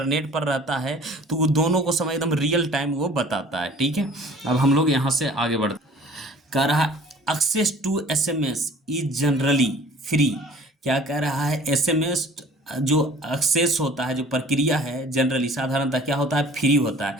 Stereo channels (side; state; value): both; normal; correlation 0.49